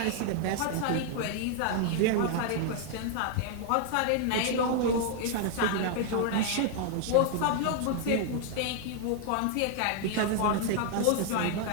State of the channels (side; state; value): both; different; correlation 0.00